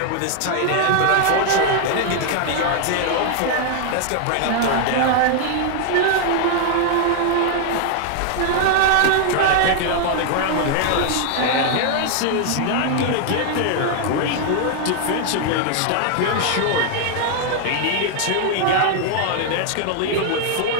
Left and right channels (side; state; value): both; different; correlation 0.00